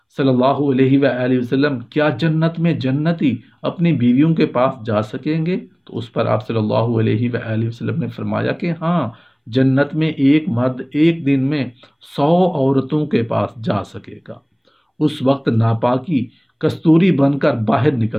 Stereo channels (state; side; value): identical; both; correlation 1.00